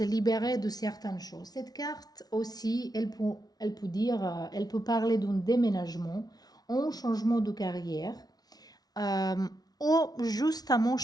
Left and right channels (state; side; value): late; right; 0.19 ms